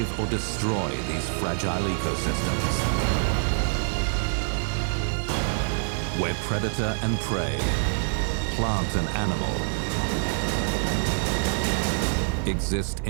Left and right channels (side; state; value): left; silent; 61 dB below the other